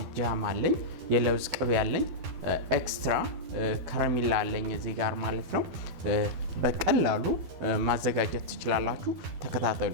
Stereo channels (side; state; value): left; late; 12 ms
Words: ጃም አለኝ፣ የለውዝ ቅቤ አለኝ፣ ኤክስትራ ከረሜላ አለኝ እዚህ ጋር ማለት ነው። በቀላሉ ማዘጋጀት ትችላላችሁ። ተከታተሉ።